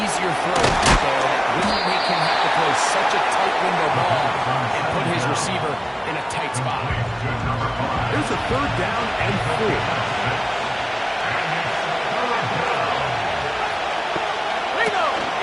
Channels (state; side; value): identical; both; correlation 1.00